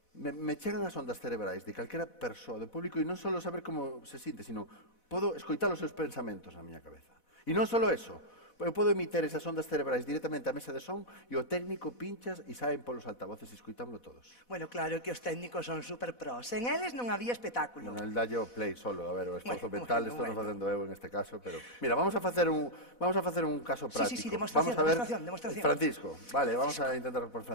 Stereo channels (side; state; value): right; late; 4.1 ms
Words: me chegan as ondas cerebrais de calquera persoa do público e non só saber como se sinte, sino podo escoitar os seus pensamentos na miña cabeza. E non só eso, eu podo emitir esas ondas cerebrais directamente á mesa de son e o técnico pinchas e saen polos altavoces e escoitámoslo todos. Bueno, claro que os técnicos son super pros. En eles non había espectáculo. Bueno, el dallo play solo, a ver, o esforzo mental, bueno, estou non facendo eu en este caso, pero... Mira, vamos a facer un caso práctico. Sí, demostración, Vamos a ver, demostración. Francisco, vale, vamos a intentar por